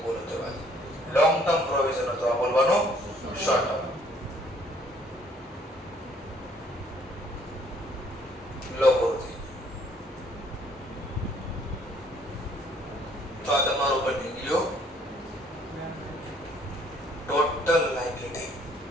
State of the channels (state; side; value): normal; both; correlation 0.62